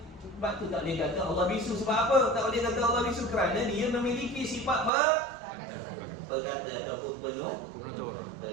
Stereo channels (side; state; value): left; drops out; at 4.9 s